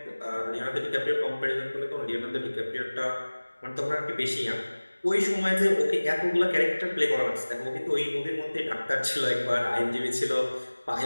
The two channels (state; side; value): inverted; both; correlation -1.00